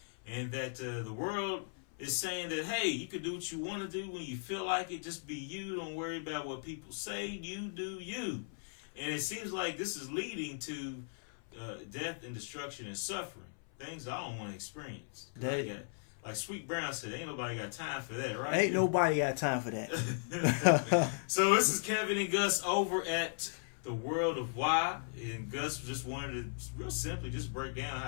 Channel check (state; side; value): silent; right; 53 dB below the other